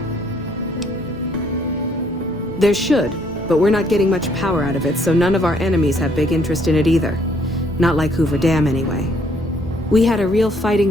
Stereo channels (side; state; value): both; normal; correlation 0.66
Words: There should, but we're not getting much power out of it, so none of our enemies have big interest in it either. Not like Hoover Dam, anyway. We had a real fighting